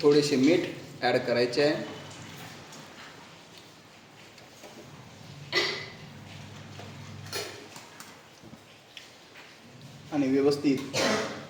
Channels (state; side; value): identical; both; correlation 1.00